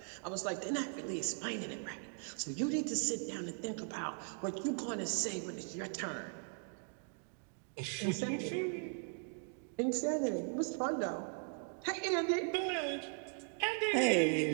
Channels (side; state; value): left; silent; 52 dB below the other